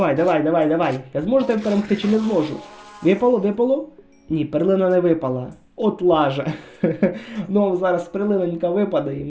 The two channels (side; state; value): both; identical; correlation 1.00